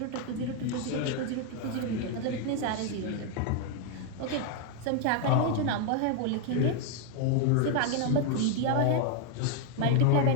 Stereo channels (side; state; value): both; different; correlation 0.00